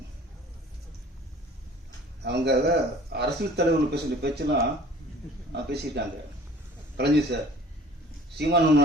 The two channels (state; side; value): normal; both; correlation 0.48